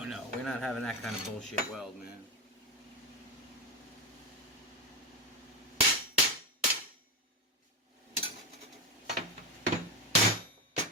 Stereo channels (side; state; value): both; normal; correlation 0.13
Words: no. We're not having that kind of bullshit weld, man.